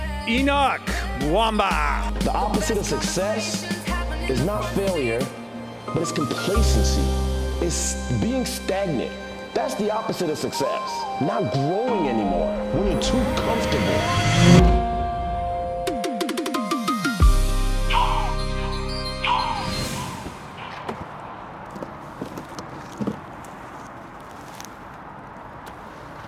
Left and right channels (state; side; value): identical; both; correlation 1.00